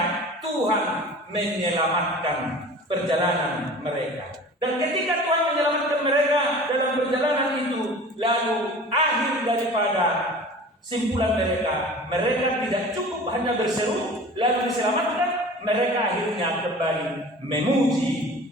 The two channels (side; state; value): both; normal; correlation 0.41